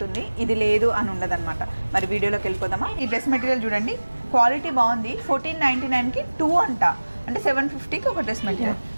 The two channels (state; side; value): inverted; both; correlation -1.00